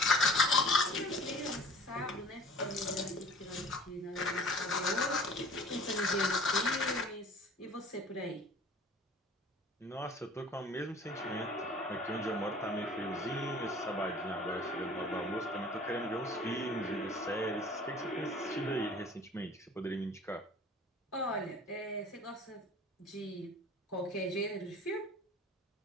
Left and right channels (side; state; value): both; normal; correlation 0.47